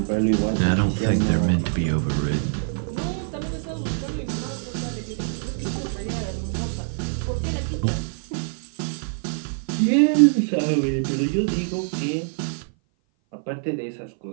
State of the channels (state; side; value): silent; left; 57 dB below the other